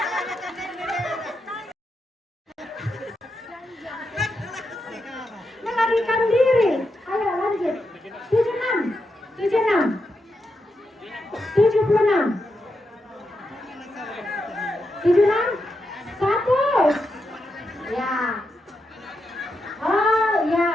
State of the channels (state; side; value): normal; both; correlation 0.85